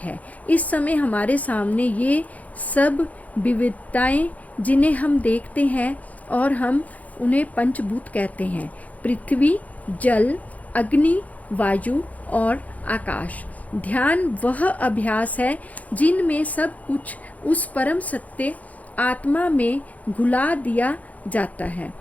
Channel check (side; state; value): right; late; 0.073 ms